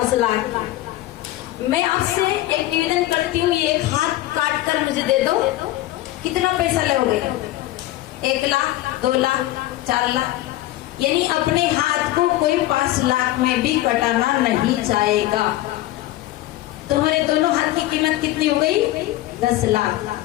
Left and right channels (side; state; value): right; quieter; 15.8 dB